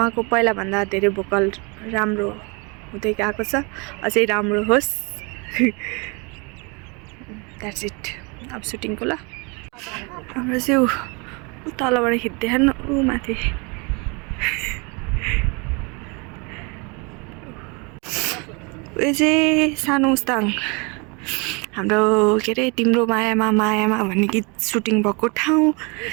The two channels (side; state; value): left; quieter; 30.6 dB